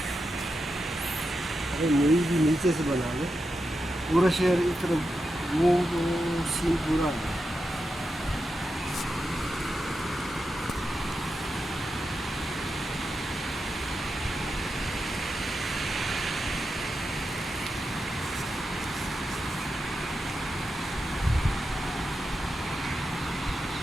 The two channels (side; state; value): both; normal; correlation 0.88